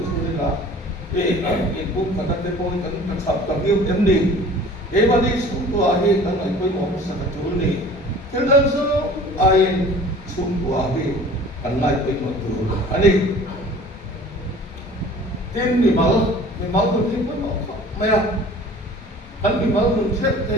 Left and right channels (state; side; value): normal; both; correlation 0.46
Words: là in cũng phải cái bôi cái sập cái yêu em đi, cái mà đi chung qua thì cái này કોઈ một sự thật chủ này, cái đó số ai chung qua thì cái này કોઈ một chủ anh đi, tin thì máu tôi tin cũng không, mày à, anh bị máu mình chết